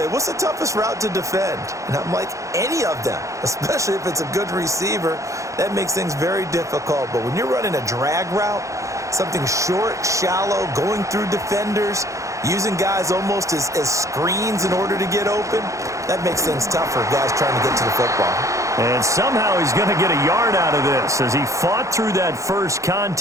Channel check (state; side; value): late; left; 0.15 ms